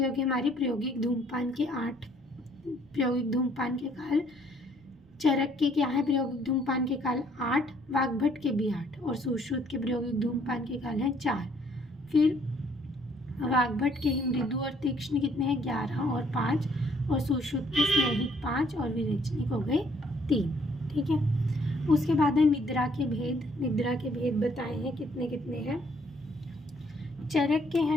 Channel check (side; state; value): right; noise; rumble, 29 dB below the sound